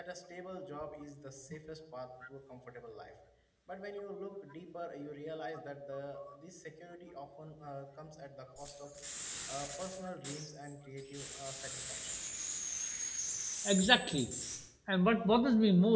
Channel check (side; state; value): both; identical; correlation 1.00